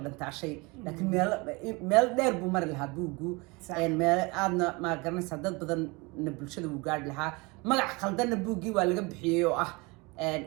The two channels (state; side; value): quieter; left; 26.4 dB